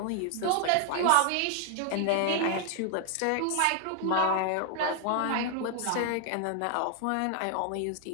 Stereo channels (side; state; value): both; different; correlation 0.00